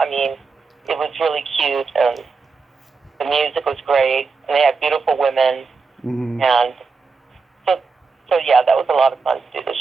mean, it was really cute and the music was great, and they had beautiful women, Mm-hmm. and so yeah, that was a lot of fun to do the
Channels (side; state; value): left; quieter; 4.7 dB